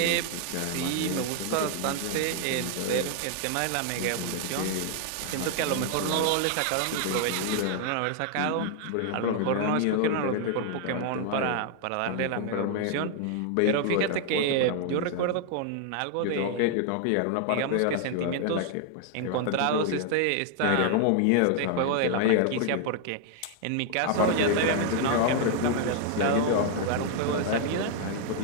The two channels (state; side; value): different; both; correlation 0.00